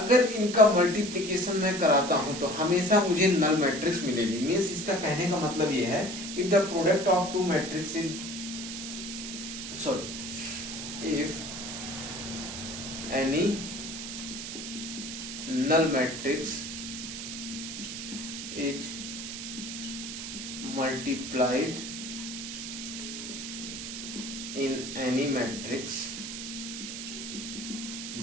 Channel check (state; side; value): noise; right; hiss, 7 dB below the sound